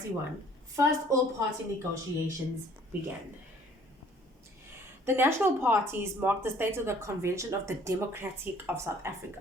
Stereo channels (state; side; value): normal; both; correlation 0.57